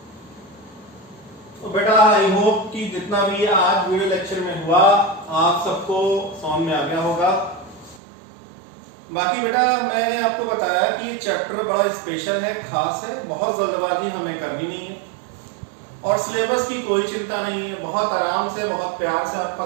तो बेटा आई होप कि जितना भी आज वीडियो लेक्चर में हुआ आप सबको समझ में आ गया होगा। बाकी बेटा मैंने आपको बताया कि ये चैप्टर बड़ा स्पेशल है, खास है, बहुत जल्दबाजी हमें करनी नहीं है और सिलेबस की कोई चिंता नहीं है। बहुत आराम से, बहुत प्यार से आपका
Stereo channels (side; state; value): left; drops out; at 8.0 s